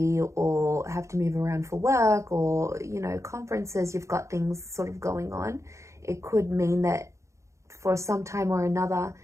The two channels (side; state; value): left; late; 0.14 ms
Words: or have to move around for work or, you know, conferences, you've got things sort of going on. It could mean that for some time or another,